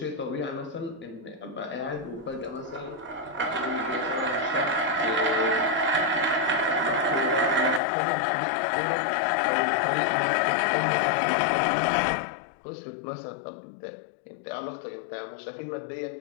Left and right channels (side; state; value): right; drops out; at 7.8 s